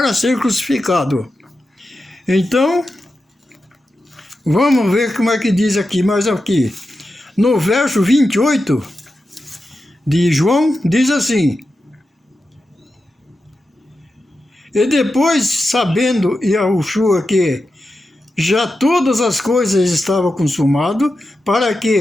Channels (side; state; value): both; normal; correlation 0.90